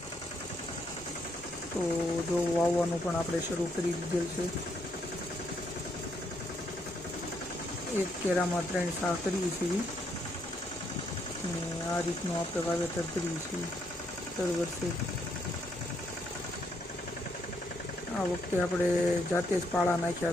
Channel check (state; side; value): normal; both; correlation 0.74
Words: તો જો વાવવાનું પણ આપણે શરૂ કરી દીધેલ છે। એક કેરામાં 3 સાહ કરીએ છીએ અને આ રીતનું આપણે વાવેતર કરીએ છીએ દર વર્ષે। આ વખતે આપણે જાતે જ પાળા